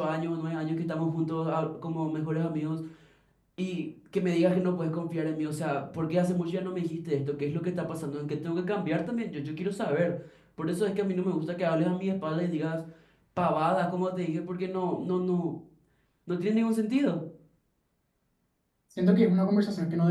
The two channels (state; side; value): identical; both; correlation 1.00